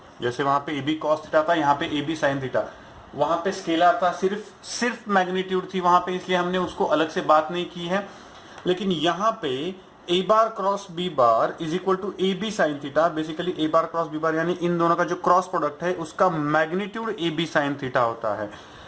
जैसे वहां पे ए बी कॉस थीटा था, यहाँ पे ए बी साइन थीटा. वहां पे स्केलर था, सिर्फ मैग्नीट्यूड थी वहां पे, इसलिए हमने उसको अलग से बात नहीं की है. लेकिन यहाँ पे A bar cross B bar is equal to A B sine theta. Basically A bar cross B bar यानी इन दोनों का जो क्रॉस प्रोडक्ट है उसका magnitude A B sine theta होता है.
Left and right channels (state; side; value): identical; both; correlation 1.00